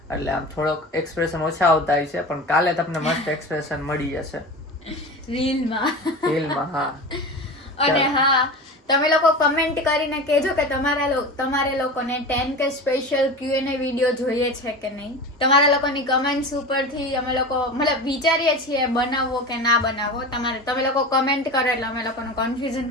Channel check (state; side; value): normal; both; correlation 0.30